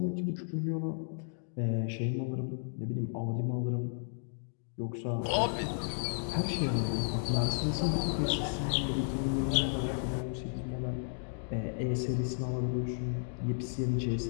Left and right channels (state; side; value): silent; right; digital silence